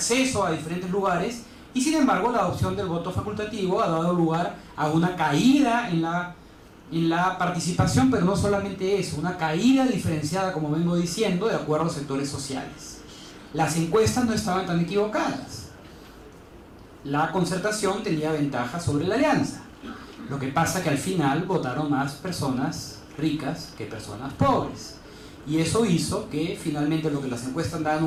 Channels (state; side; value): identical; both; correlation 1.00